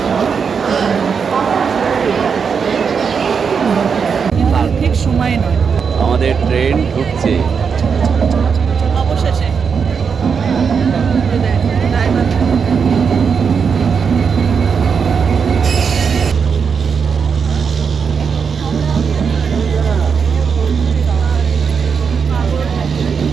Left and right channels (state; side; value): quieter; left; 6.2 dB